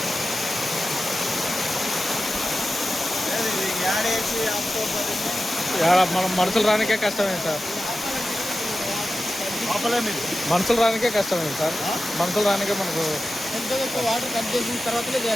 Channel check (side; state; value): both; normal; correlation 0.93